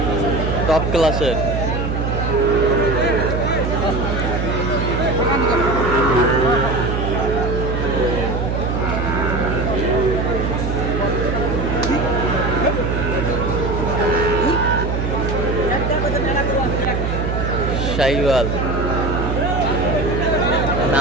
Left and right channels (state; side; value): noise; right; hum, 1 dB below the sound